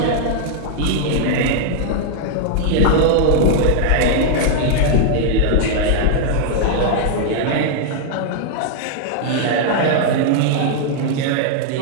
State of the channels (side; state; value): both; different; correlation 0.00